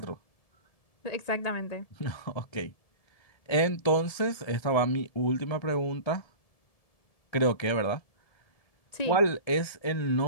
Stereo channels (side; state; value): right; late; 1.7 ms